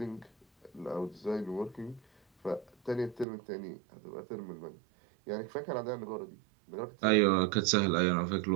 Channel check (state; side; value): drops out; left; at 3.2 s